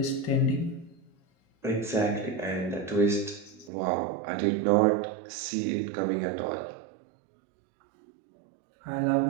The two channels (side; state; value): left; drops out; at 3.7 s